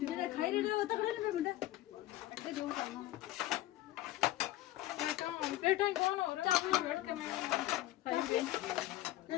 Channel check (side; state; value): right; quieter; 15.3 dB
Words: खाई रहे हो तक नहीं बेटा ये जो प्लेटा कौन हो रहा चावल वेट करने खाएंगे